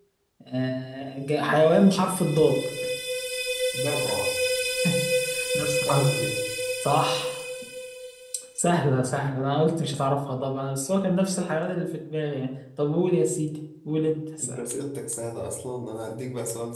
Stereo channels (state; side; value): identical; both; correlation 1.00